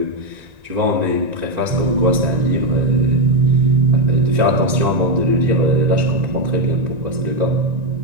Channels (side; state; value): left; late; 1.9 ms